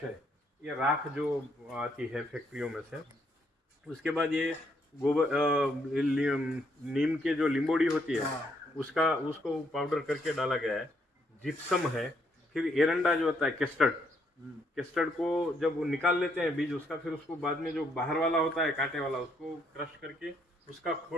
है, ये राख जो आती है फैक्ट्रियों में से। उसके बाद ये गोबर नीम के जो लिंबोड़ी होती है उसको पाउडर करके डाला गया है। जिप्सम है। फिर एरंडा जो होता है केस्टर्ड को जब वो निकाल लेते हैं बीज उसका, फिर उसको बाद में जो बाहर वाला होता है कांटे वाला, उसको क्रश करके उसका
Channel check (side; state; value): both; normal; correlation 0.72